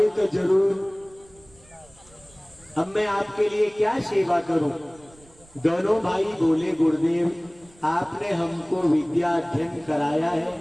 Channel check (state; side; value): noise; right; rumble, 28 dB below the sound